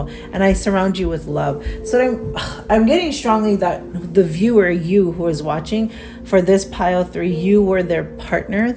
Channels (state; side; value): identical; both; correlation 1.00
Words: And I surround you with love. So I'm getting strongly that the viewer, you who is watching, for this pile 3, you were their partner,